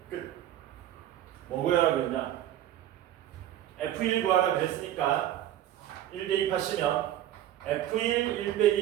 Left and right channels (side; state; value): left; quieter; 12.4 dB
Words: 끝. 뭐 구하라 그랬냐? f1 구하라 그랬으니까 1 대입하시면 f1 1